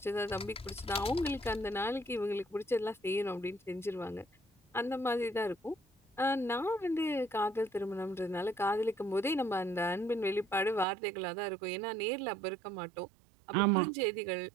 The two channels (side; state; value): left; drops out; at 10.9 s